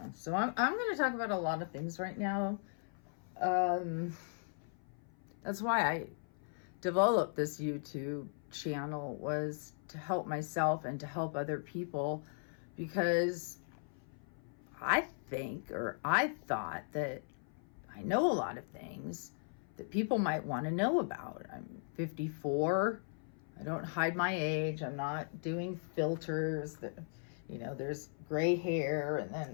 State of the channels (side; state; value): right; silent; 53 dB below the other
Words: so I'm going to talk about a lot of things right now. That's why I developed this YouTube channel, was to help myself and to help other people, because I thought that I know a lot of things that people might want to know about. I'm 54. I don't hide my age. I'm not doing filters. There's gray hair and